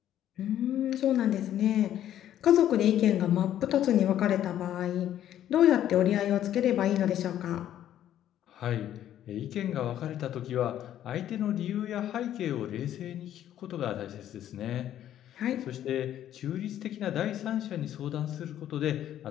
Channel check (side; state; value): right; quieter; 11.4 dB